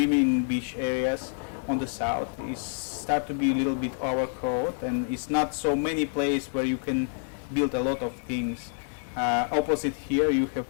beach areas on the south is start to be a little bit overcrowded, and it's not so many places where you can build a lot of things. Opposite here, you have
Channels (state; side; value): silent; right; 60 dB below the other